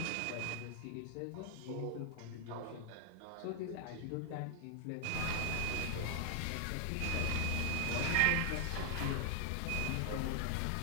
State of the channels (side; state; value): both; different; correlation 0.00